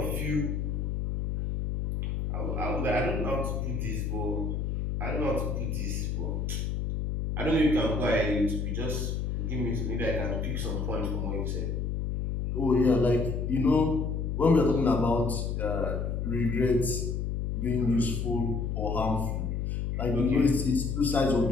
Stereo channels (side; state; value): left; noise; hum, 1 dB below the sound